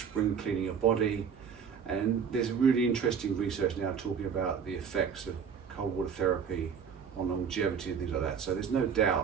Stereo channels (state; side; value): quieter; left; 6.9 dB